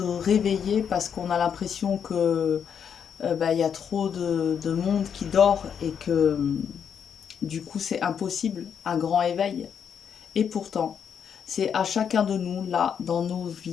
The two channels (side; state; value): right; quieter; 7.6 dB